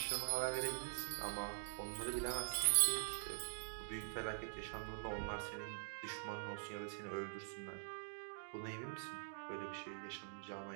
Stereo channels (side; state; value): left; silent; digital silence